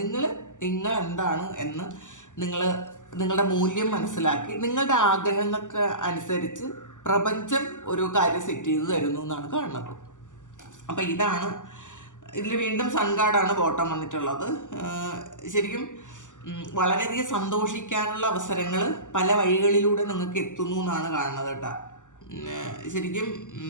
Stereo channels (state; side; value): late; right; 0.87 ms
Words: എന്താണ് എന്ന് നിങ്ങളുടെ മൂല്യം മനസ്സിലാക്കി നിങ്ങളുടെ ആഗ്രഹങ്ങൾക്ക് അനുസരിച്ച് പ്രപഞ്ചം ഒരു കാര്യം സെറ്റ് ചെയ്ത് തരുന്നു എന്നാണ് കാണുന്നത്. അപ്പം ഇതിൽ വീണ്ടും സൺ കാർഡാണ് ബോട്ടം വന്നിട്ടുള്ളത്. ശരിക്കും വളരെയധികം സന്തോഷിക്കാനുള്ള അവസരങ്ങൾ പല വഴികളിലൂടെ നിങ്ങൾക്ക് എത്തുന്നു എന്നാണ് കാണുന്നത് കേട്ടോ. ശരിക്കും